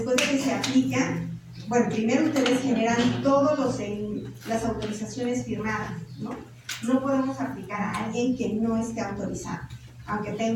de que se aplica, bueno, primero ustedes generan todos las autorizaciones firmadas, ¿no? No podemos aplicar a alguien que no esté autorizado, aunque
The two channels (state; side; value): identical; both; correlation 1.00